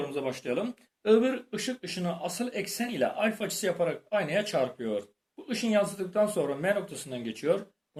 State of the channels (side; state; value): both; identical; correlation 1.00